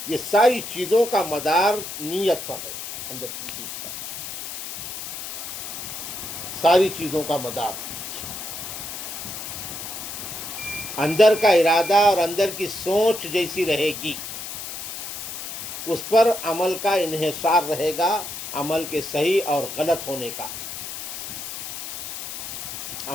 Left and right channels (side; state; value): left; noise; hiss, 7 dB below the sound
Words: یہ ساری چیزوں کا مدار نیت پر ہے. اندر کی چیز پر ساری چیزوں کا مدار، اندر کا ارادہ اور اندر کی سوچ جیسی رہے گی اس پر عمل کا انحصار رہے گا، عمل کے صحیح اور غلط ہونے کا،